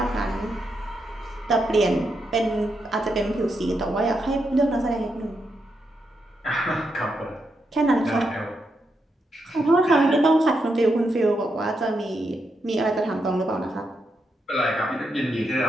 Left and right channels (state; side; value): normal; both; correlation 0.83